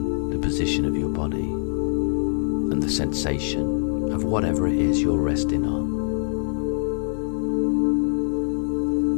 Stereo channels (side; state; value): right; silent; 62 dB below the other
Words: the position of your body and the sensation of whatever it is you're resting on.